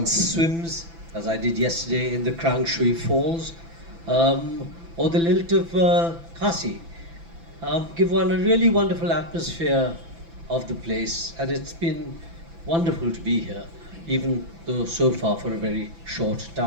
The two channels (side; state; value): left; late; 6.0 ms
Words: swims, as I did yesterday in the Krang Shui Falls, or the lilt of Kasi, give one a really wonderful atmosphere of the place, and it's been wonderful to be here, even though so far for a very short